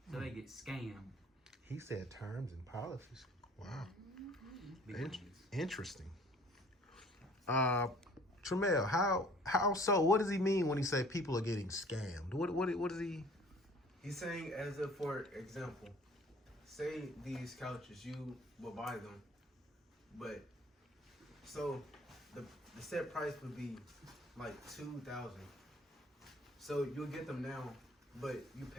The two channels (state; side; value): normal; both; correlation 0.52